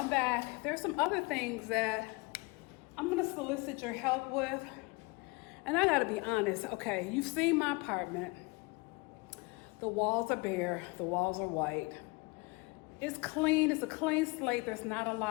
back. There's some other things that I'm gonna solicit your help with. And I gotta be honest, okay, you've seen my apartment. The walls are bare, the walls are white. It's clean, it's a clean slate, there's not a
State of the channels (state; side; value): quieter; right; 27.2 dB